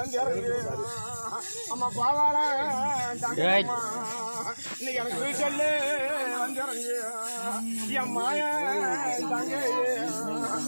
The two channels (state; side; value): inverted; both; correlation -1.00